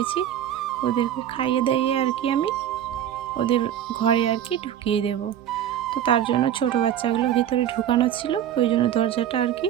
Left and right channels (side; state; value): left; quieter; 10.5 dB